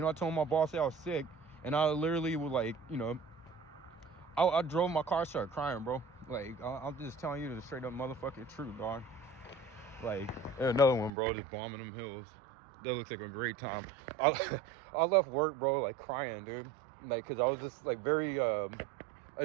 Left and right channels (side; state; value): left; drops out; at 11.1 s